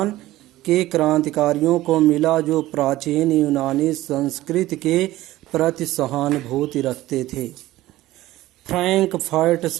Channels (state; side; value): quieter; left; 16.2 dB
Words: के क्रांतिकारियों को मिला जो प्राचीन यूनानी संस्कृति के प्रति सहानुभूति रखते थे। फ्रैंकफर्ट